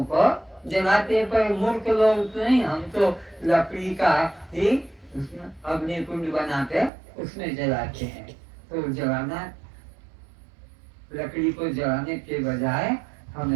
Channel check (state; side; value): drops out; left; at 6.9 s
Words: को जलाते, पर मूर्ख लोग नहीं, हम तो लकड़ी का ही अग्नि कुंड बनाते उसमें जलाते हैं। तो जलाना, लकड़ी को जलाने के बजाय